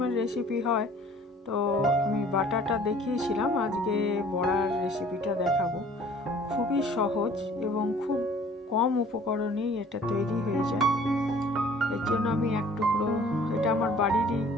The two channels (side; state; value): both; normal; correlation 0.52